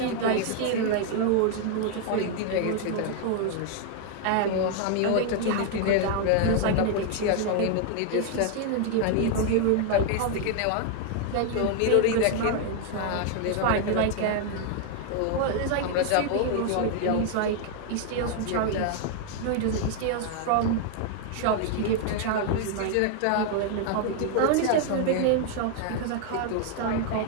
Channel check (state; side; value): different; both; correlation 0.00